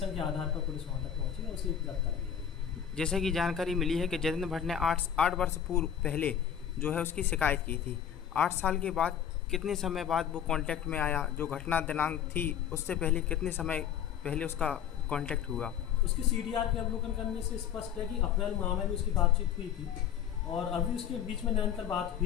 के आधार पर पुलिस वहाँ तक पहुँची और उसे गिरफ्तार किया। जैसे कि जानकारी मिली है कि जितेंद्र भट्ट ने 8 वर्ष पूर्व पहले जो है उसकी शिकायत की थी। 8 साल के बाद कितने समय बाद वो कांटेक्ट में आया? जो घटना दिनांक थी उससे पहले कितने समय पहले उसका कांटेक्ट हुआ? उसकी CDR के अवलोकन करने से स्पष्ट है कि अप्रैल माह में भी उसकी बातचीत हुई थी और अभी उसके बीच में निरंतर बात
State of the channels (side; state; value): right; quieter; 9.1 dB